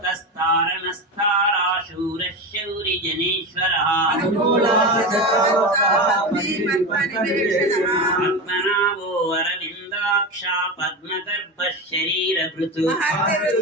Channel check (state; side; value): normal; both; correlation 0.21